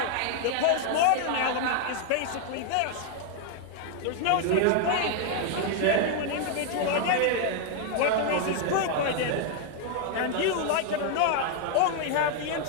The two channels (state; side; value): different; both; correlation 0.00